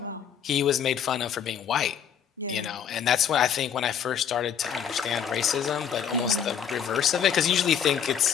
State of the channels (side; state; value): right; quieter; 8.3 dB